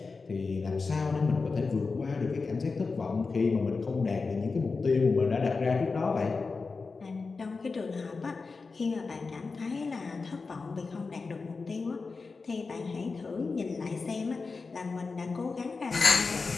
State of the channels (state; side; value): quieter; right; 4.3 dB